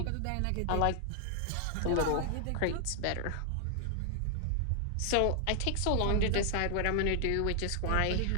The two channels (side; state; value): both; different; correlation 0.00